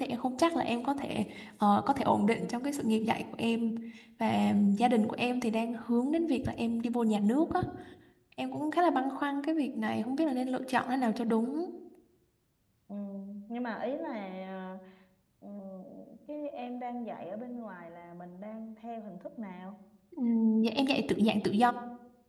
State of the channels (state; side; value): identical; both; correlation 1.00